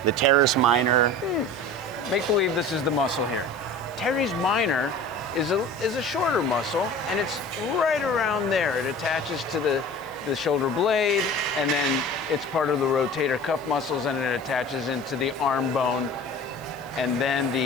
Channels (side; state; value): right; noise; hiss, 25 dB below the sound